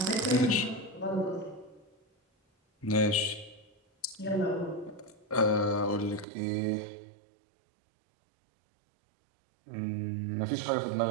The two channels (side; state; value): left; drops out; at 6.2 s